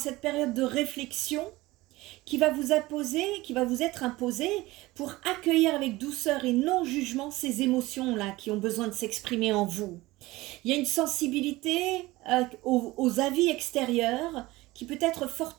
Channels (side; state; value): left; quieter; 19.5 dB